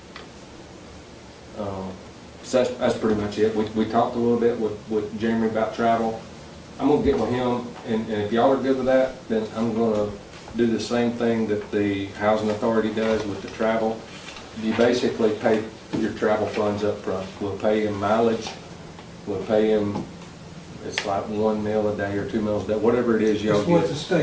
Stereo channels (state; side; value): identical; both; correlation 1.00